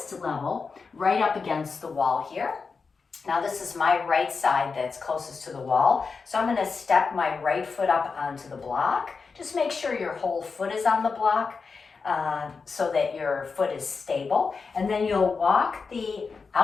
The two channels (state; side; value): quieter; right; 4.9 dB